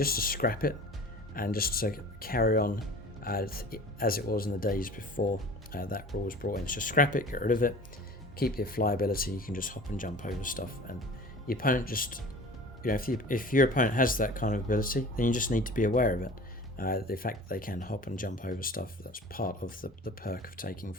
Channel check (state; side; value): normal; both; correlation 0.41